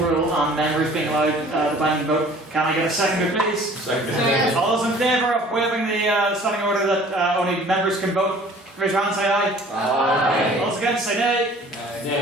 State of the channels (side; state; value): both; normal; correlation 0.50